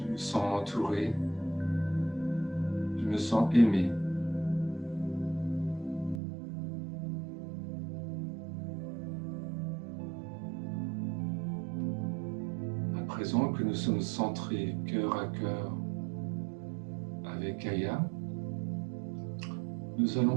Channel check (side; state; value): left; drops out; at 6.2 s